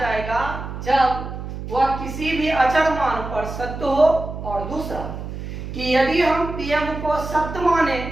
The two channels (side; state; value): right; noise; hum, 8 dB below the sound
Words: जब वह किसी भी अचर मान पर सत्य हो। और दूसरा कि यदि हम पीएम को सत्य माने